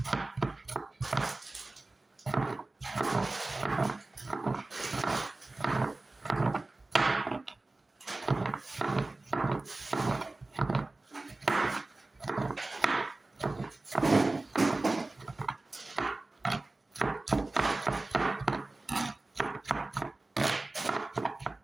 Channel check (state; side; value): quieter; left; 3.0 dB